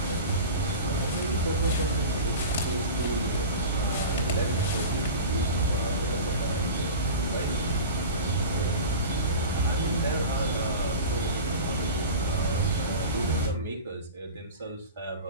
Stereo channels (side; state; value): both; inverted; correlation -0.33